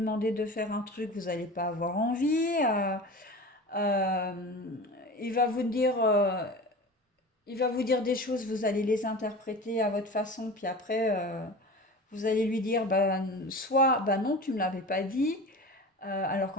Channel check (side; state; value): both; normal; correlation 0.34